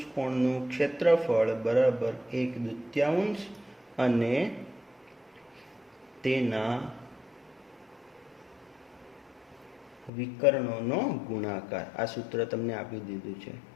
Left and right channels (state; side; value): drops out; right; at 10.1 s